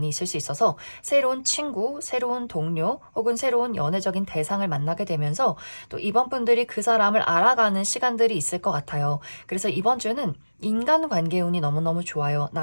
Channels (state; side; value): inverted; both; correlation -1.00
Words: 있을 수 있어서 새로운 친구, 새로운 동료 혹은 새로운 연애적인 대상을 만나게 되면서 또 이번 분들이 그 사람을 알아가는 시간들이 있을 것 같아요. 그래서 이번 주는 인간관계 운이 너무너무 좋아요.